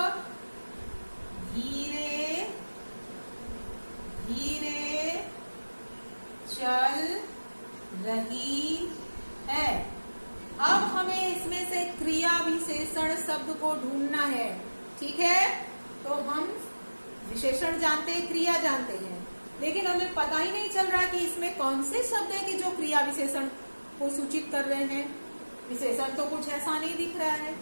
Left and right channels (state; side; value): inverted; both; correlation -1.00